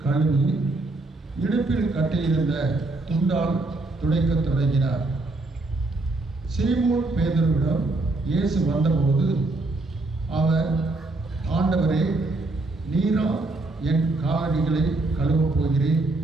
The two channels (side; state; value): left; quieter; 3.1 dB